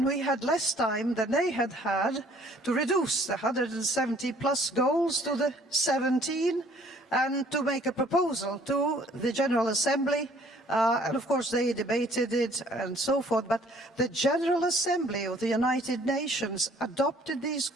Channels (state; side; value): normal; both; correlation 0.58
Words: we had less time than they had had to reduce the 170 plus goals to the 17 and to make a proposal to the General Assembly. And of course they debated it and so forth, but the General Assembly of the United Nations adopted these